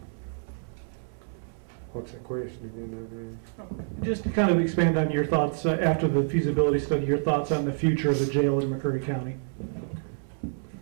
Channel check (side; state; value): left; silent; 60 dB below the other